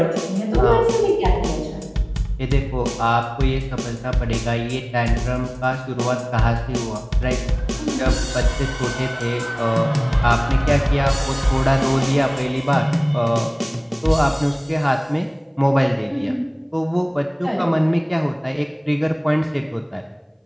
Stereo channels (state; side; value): identical; both; correlation 1.00